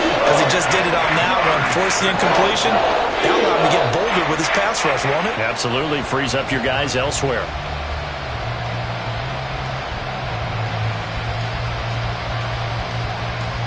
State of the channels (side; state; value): both; identical; correlation 1.00